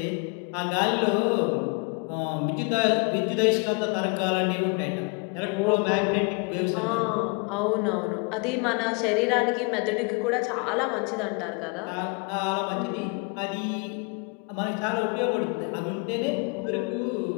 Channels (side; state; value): right; quieter; 32.7 dB